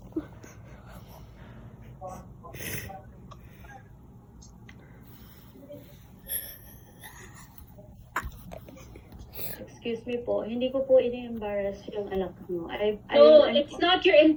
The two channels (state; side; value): identical; both; correlation 1.00